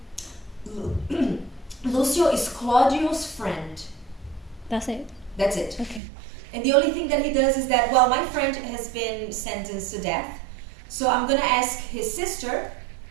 Lucio is Claudio's friend. That's it? That's it. Okay. And the only thing that he does is that, my friend has been sentenced to death, so I'm going to ask his sister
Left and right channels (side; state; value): left; drops out; at 6.0 s